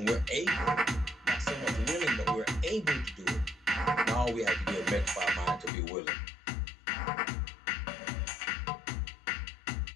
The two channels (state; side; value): drops out; right; at 5.7 s